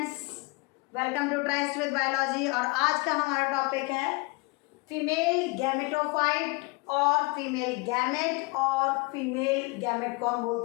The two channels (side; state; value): right; quieter; 27.0 dB